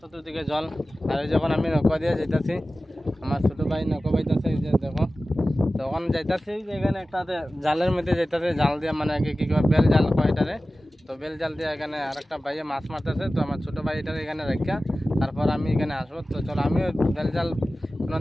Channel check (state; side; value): normal; both; correlation 0.96